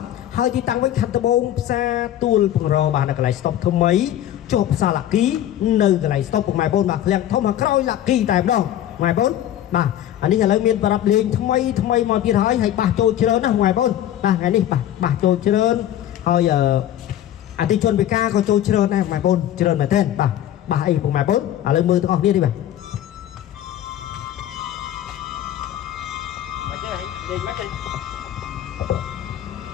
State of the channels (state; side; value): quieter; right; 11.9 dB